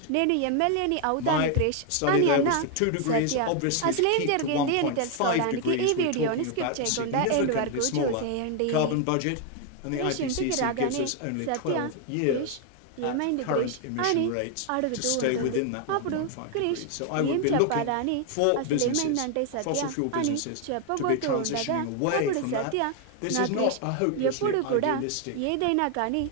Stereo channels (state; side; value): different; both; correlation 0.01